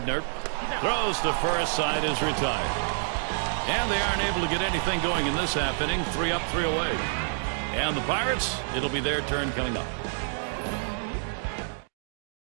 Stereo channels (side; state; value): left; silent; digital silence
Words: throws to first. Side is retired. And they aren't able to get anything going in this half inning. 3 up, 3 away. And the Pirates, it'll be their turn coming up.